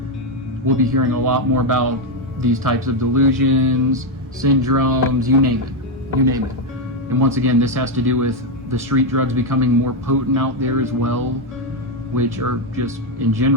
we'll be hearing a lot more about these types of delusions, syndromes, you name it. And once again, this has to do with the street drugs becoming more potent out there as well, which are just, in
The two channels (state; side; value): normal; both; correlation 0.04